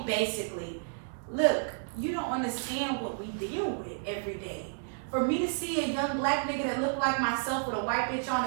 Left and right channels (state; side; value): silent; left; digital silence